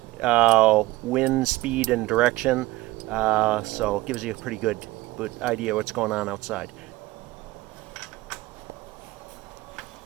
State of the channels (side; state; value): left; quieter; 19.0 dB